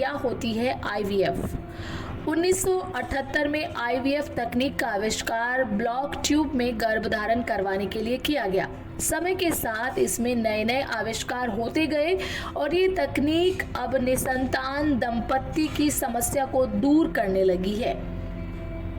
होती है आईवीएफ? 1978 में आईवीएफ तकनीक का आविष्कार ब्लॉक ट्यूब में गर्भधारण करवाने के लिए किया गया। समय के साथ इसमें नए नए आविष्कार होते गए और ये तकनीक अब निसंतान दंपत्ति की समस्या को दूर करने लगी है।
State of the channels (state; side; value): identical; both; correlation 1.00